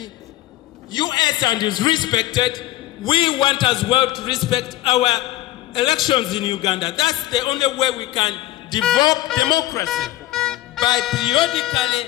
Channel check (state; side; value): quieter; right; 15.7 dB